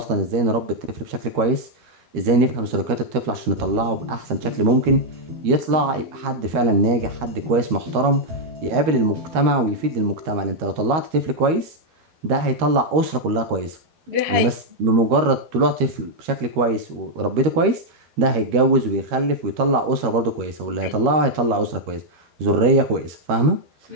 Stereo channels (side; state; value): left; late; 13 ms